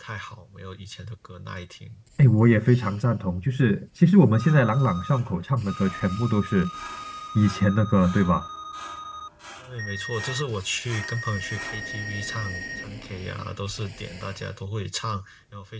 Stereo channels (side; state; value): both; identical; correlation 1.00